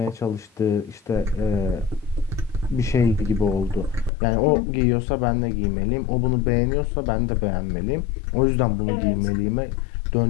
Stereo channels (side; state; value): right; drops out; at 4.1 s